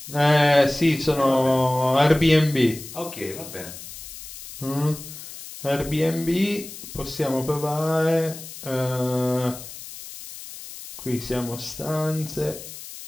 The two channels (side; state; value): left; noise; hiss, 13 dB below the sound